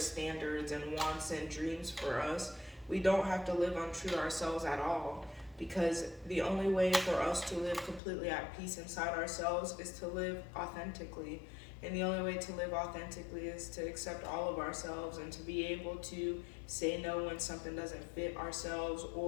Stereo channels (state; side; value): drops out; right; at 8.0 s